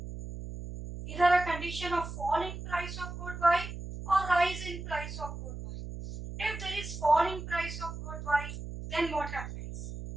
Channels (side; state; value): right; noise; hum, 9 dB below the sound